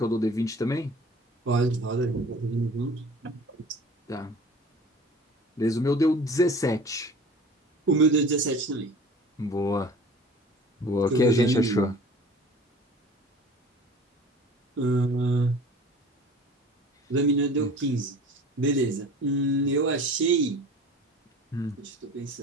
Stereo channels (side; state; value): both; normal; correlation 0.43